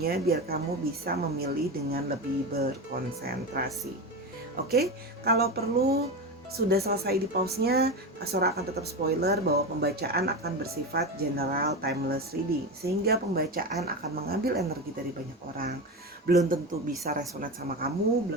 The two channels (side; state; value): both; normal; correlation 0.20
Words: biar kamu bisa memilih dengan lebih berkonsentrasi. Oke? Kalau perlu sudah selesai di pause-nya, Sora akan tetap spoiler bahwa pembacaan akan bersifat general timeless reading, sehingga pembacaan akan mengambil energi dari banyak orang. Belum tentu bisa resonate sama kamu,